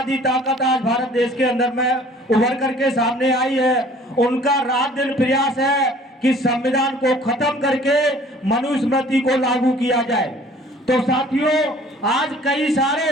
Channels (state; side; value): normal; both; correlation 0.52